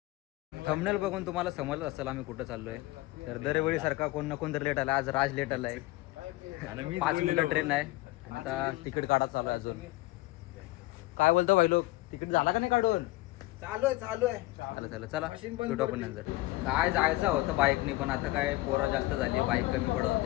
थंबनेल बघून तुम्हाला समजलं असेल आम्ही कुठं चाललोय. तर दरवेळी सारखा कोण ना कोण तर लेट आला. आज राज लेट आलाय आणि 5 मिनिटं ट्रेन आहे आणि आता तिकीट काढा चालू आहे. अजून काय बोलतो भाई लोक, तिकीट झाला का नाही काढून? चालू आहे चला भेटू आपण नंतर. काय जायचं होतं बाईकने, पण आता काय पोरं जास्त झाली, बाईक कमी पडत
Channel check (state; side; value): quieter; right; 19.6 dB